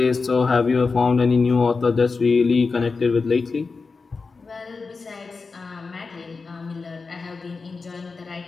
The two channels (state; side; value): quieter; right; 4.4 dB